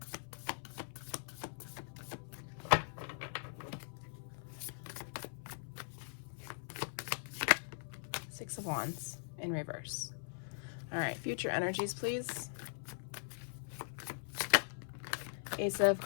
Six of Wands in reverse. All right, future energies, please. Ace of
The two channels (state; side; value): silent; right; 50 dB below the other